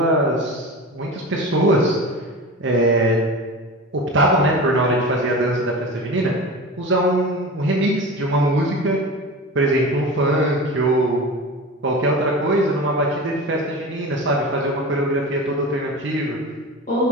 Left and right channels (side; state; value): both; normal; correlation 0.31